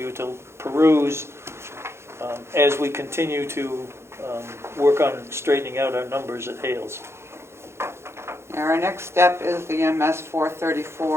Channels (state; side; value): late; left; 0.13 ms